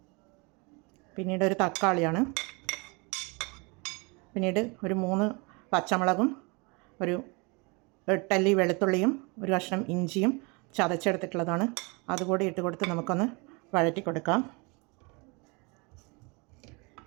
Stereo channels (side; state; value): left; quieter; 29.5 dB